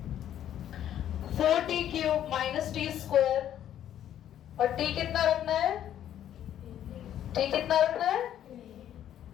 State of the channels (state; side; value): quieter; right; 10.9 dB